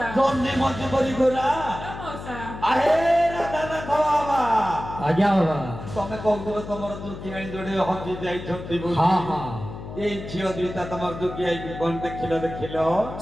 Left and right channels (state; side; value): noise; left; hum, 11 dB below the sound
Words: ଜହ୍ନି ମଞ୍ଜି ପରି ଗୋରା ହ୍ୟାଲୋ ମଉସା ଆରେ ରାଧାନାଥ ବାବା ଆଜ୍ଞା ବାବା ତମେ କହୁଥିଲ ତମର ଯୋଉ କିଆଣି ଯୋଡେ ହଜି ଯାଇଛନ୍ତି ବୋଲି ହଁ ହଁ এই ঝিଅ দুইটা ତମର ଯୋଗୀ ଆଇକି କଣ ଦେଖିଲ